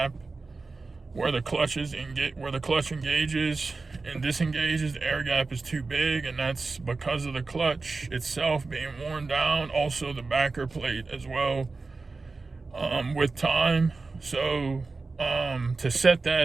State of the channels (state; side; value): quieter; left; 3.9 dB